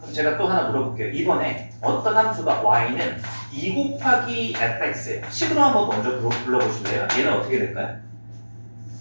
제가 또 하나 물어볼게요. 이번에 어떤 함수가 y는 2 곱하기 fx예요. 식으로 한번 먼저 불러보실래요? 얘는 어떻게 될까요?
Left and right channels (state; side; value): inverted; both; correlation -1.00